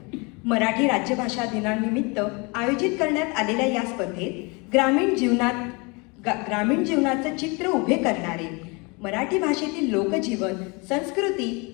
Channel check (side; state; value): right; quieter; 29.2 dB